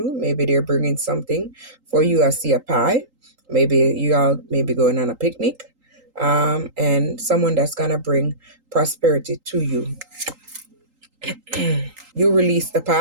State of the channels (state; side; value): late; left; 3.8 ms